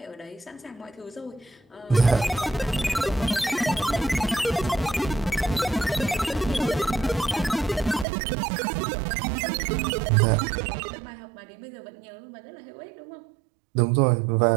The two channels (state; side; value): drops out; left; at 8.1 s